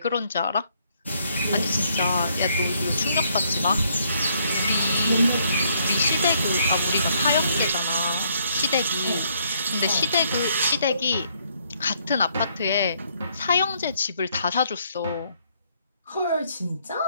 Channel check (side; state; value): both; inverted; correlation -0.69